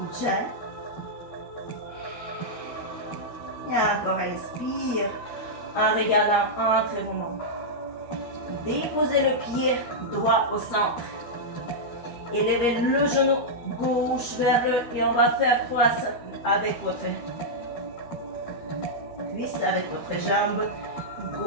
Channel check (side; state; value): right; late; 12 ms